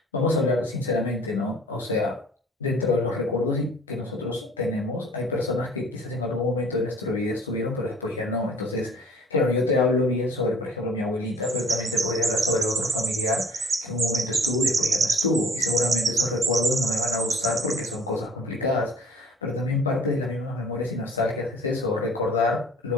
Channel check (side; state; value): both; normal; correlation 0.52